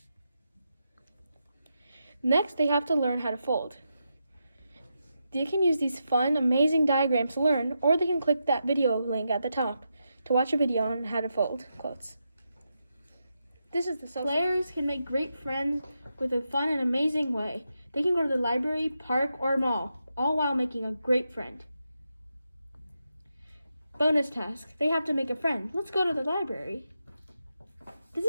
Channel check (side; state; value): both; inverted; correlation -0.86